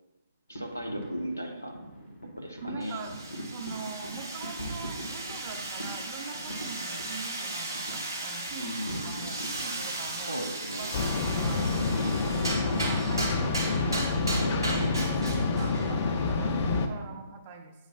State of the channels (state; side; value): inverted; both; correlation -0.59